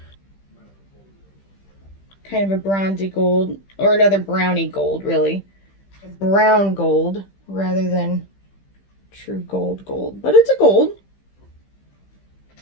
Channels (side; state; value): right; late; 15 ms